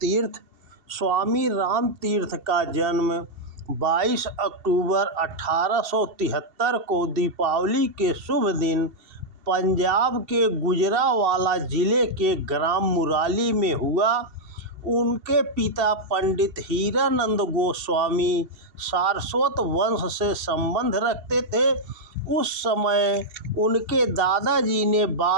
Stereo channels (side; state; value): left; late; 2.7 ms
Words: स्वामी रामतीर्थ का जन्म 22 अक्टूबर 1873 को दीपावली के शुभ दिन पंजाब के गुजरांवाला जिले के ग्राम मुराली में हुआ। उनके पिता पंडित हीरानंद गोस्वामी सारस्वत वंश से संबंध रखते थे। उस समय उनके दादाजी ने